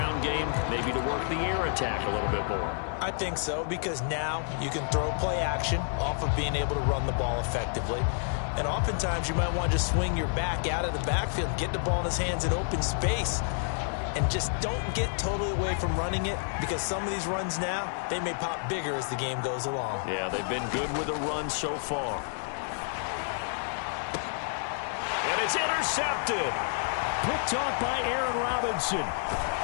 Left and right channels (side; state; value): right; silent; digital silence